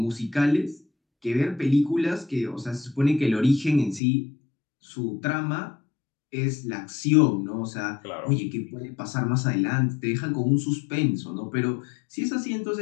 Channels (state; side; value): drops out; right; at 4.0 s